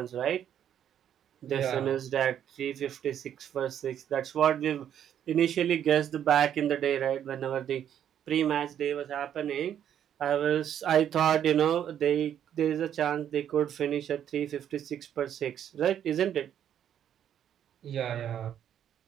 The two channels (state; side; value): quieter; left; 9.8 dB